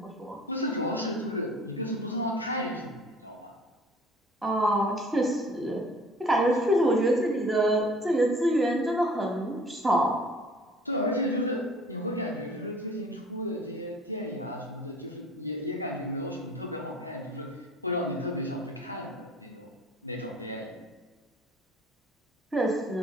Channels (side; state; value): both; normal; correlation 0.49